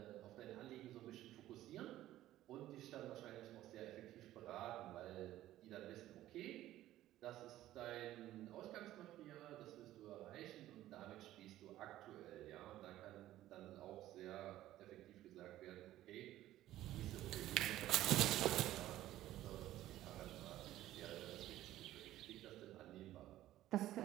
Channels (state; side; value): quieter; left; 14.3 dB